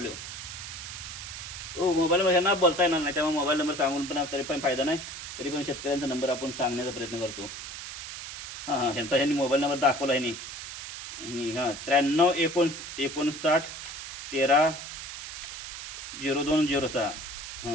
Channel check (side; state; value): right; noise; hiss, 9 dB below the sound